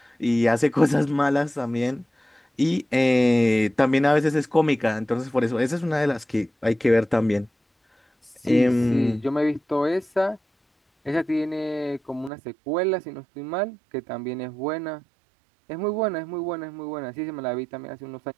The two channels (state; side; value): drops out; left; at 12.3 s